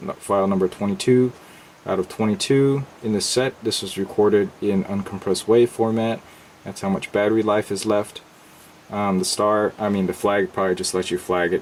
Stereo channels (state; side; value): identical; both; correlation 1.00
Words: file number 22 out of 22 in the set. This was recorded in uncompressed WAV format. That's how much battery life is left. The flag probably just lets you flag